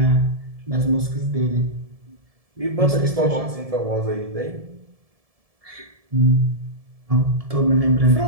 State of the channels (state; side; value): late; left; 1.7 ms